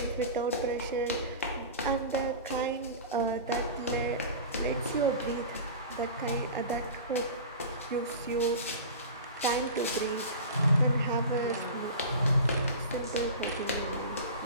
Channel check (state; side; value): inverted; both; correlation -0.33